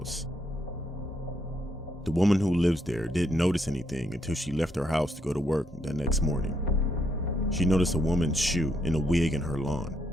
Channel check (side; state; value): both; normal; correlation 0.75